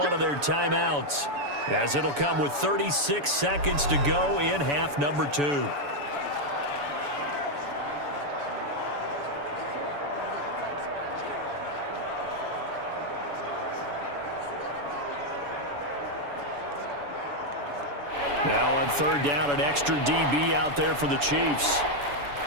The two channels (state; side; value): late; left; 7.0 ms